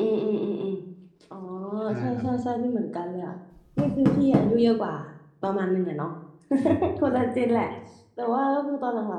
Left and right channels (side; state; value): both; identical; correlation 1.00